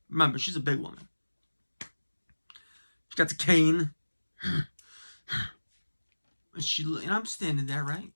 Remember, she's a big woman. She's got the cane. And I'm standing there, right?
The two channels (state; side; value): inverted; both; correlation -1.00